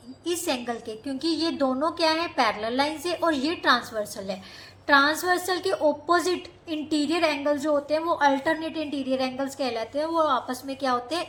इस एंगल के, क्योंकि ये दोनों क्या है? पैरेलल लाइन से, और ये ट्रांसवर्सल है। ट्रांसवर्सल के ऑपोजिट इंटीरियर एंगल्स जो होते हैं वो अल्टरनेट इंटीरियर एंगल्स कहलाते हैं, वो आपस में क्या होते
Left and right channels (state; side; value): identical; both; correlation 1.00